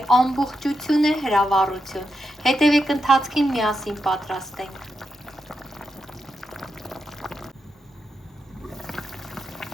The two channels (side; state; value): both; normal; correlation 0.85